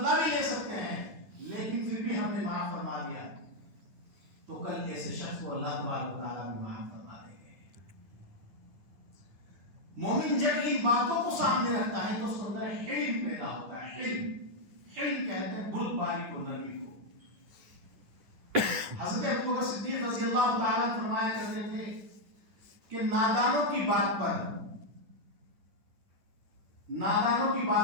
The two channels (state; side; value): late; left; 9.9 ms